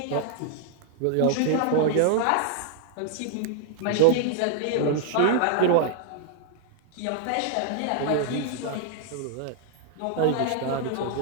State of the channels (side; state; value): both; different; correlation 0.00